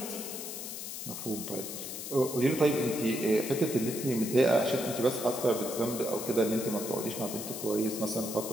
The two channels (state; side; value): noise; left; hiss, 7 dB below the sound